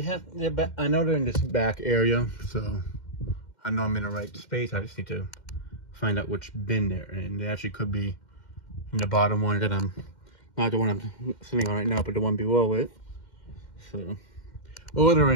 I know they're in this back area, so I know I'm in the right space. I just need to find out which bin they're in. They actually could be in the bottom one that I'm not the one I'm sitting on right now, but the one below it. So, or they're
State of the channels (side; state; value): right; late; 2.1 ms